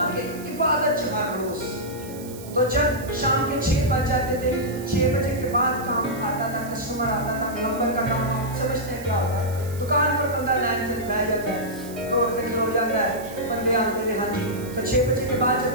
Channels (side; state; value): right; noise; hiss, 17 dB below the sound